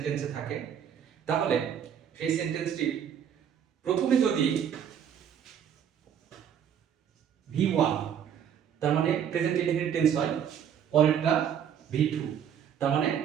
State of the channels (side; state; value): left; quieter; 8.7 dB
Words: থাকে তাহলে সেই সেন্টেন্সটি প্রথমে যদি V1 তার মানে প্রেজেন্ট ইনডেফিনিট টেন্স হয়, পরেরটা V2 তার মানে